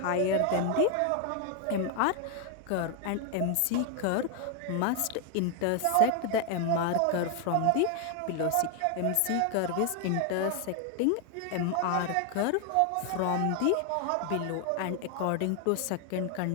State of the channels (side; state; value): both; different; correlation 0.00